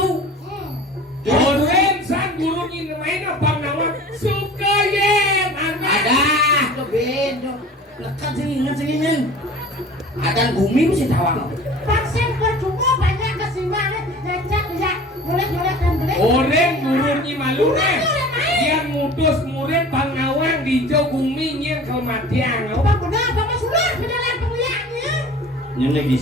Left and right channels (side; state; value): both; normal; correlation 0.42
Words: Orang sang gurun ni main apa nama? Sukayem. Ada keben, lekat sini men. Ada bumi mesti tawang. Vaksin percuma banyak kesimbangan, lecak ya, boleh dan boleh. Orang gurun ni malu ni. Yang mutus murid pangawang di jauh bumi yang kematian. Bang benar, Bapak sudah berjalan pemilihannya. Yang